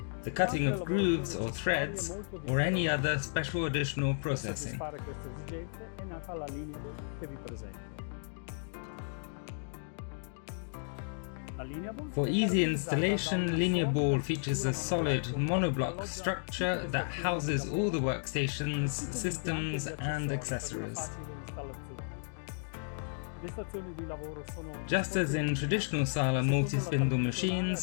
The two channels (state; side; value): silent; right; digital silence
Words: the cutting of grooves or threads, or any other special additional processing. For easy installation, Lineaball features a solid monoblock structure that houses all the workstations, systems and accessories. Just as in traditional SALA multi-spindle